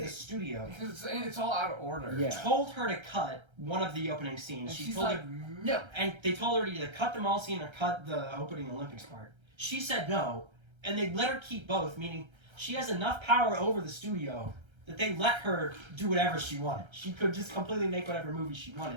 studio... Because it's all out of order. Told her to cut one of the opening scenes. And she she's told like, her, no. And they told her to either cut the mall scene or cut the opening Olympics part. She said no. And they let her keep both, meaning she has enough power over the studio that they let her do whatever she wanted. She could just completely make whatever movie she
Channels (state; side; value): late; left; 1.3 ms